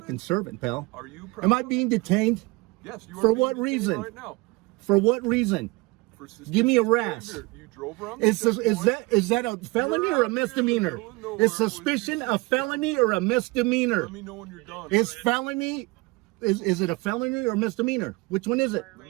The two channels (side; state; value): left; quieter; 24.0 dB